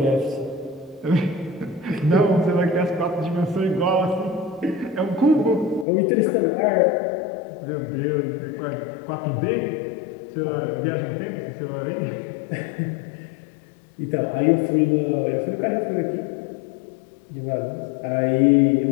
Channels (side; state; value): right; drops out; at 5.9 s